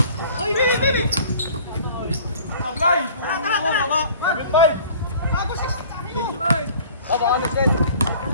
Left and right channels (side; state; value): both; inverted; correlation -0.49